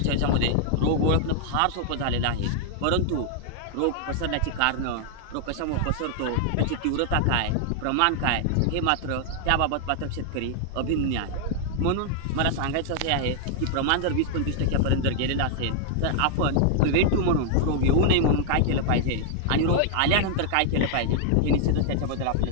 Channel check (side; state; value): both; different; correlation 0.00